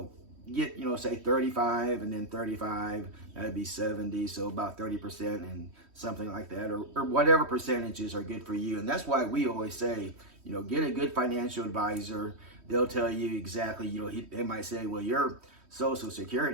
get say 35 and then 35, that'd be 70, so about 30% and something like that, or whatever percentages are good for you. And that's why we always say get a good financial advisor. They'll tell you exactly. They might say, well, your Social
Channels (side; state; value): left; late; 3.1 ms